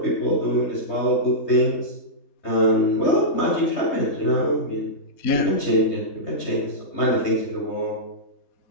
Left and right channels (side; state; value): right; late; 3.3 ms